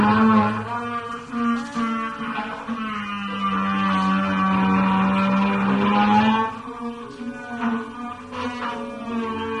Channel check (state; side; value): identical; both; correlation 1.00